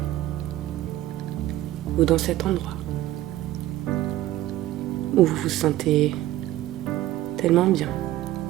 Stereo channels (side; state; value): left; quieter; 14.9 dB